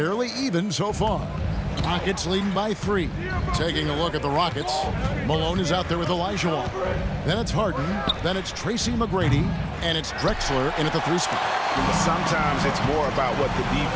even so far. Rockets leading by 3. Taking a look at the Rockets. Malone is out there with Olajuwon. Then it's Harden. Then it's Tracy McGrady. And it's Drexler in at the 3 spot. Sometimes it's more about what the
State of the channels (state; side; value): identical; both; correlation 1.00